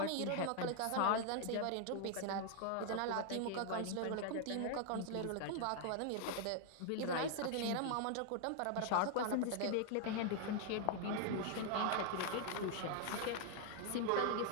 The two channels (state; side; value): different; both; correlation 0.00